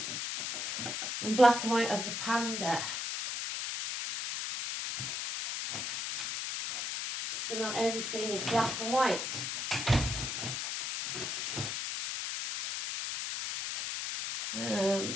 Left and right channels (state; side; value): noise; left; hiss, 3 dB below the sound